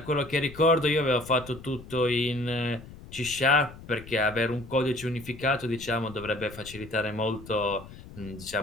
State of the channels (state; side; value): noise; left; rumble, 17 dB below the sound